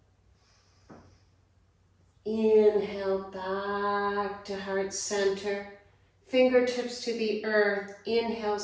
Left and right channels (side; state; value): both; identical; correlation 1.00